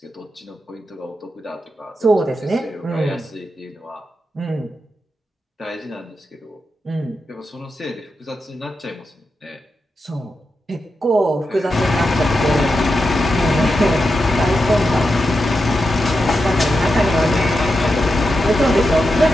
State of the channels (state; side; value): normal; both; correlation 0.87